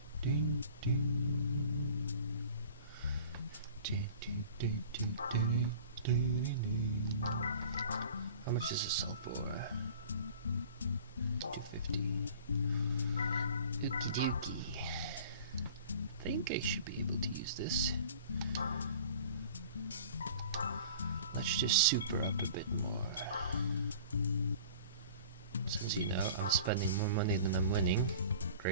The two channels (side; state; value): both; inverted; correlation -0.44